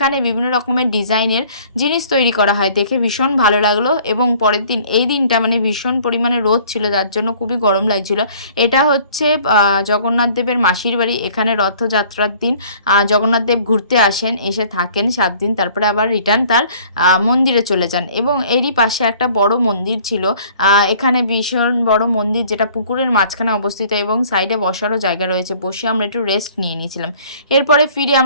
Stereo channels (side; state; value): both; inverted; correlation -0.54